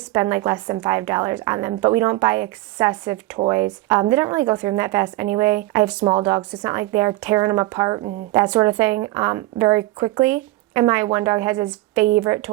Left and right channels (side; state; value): left; quieter; 18.2 dB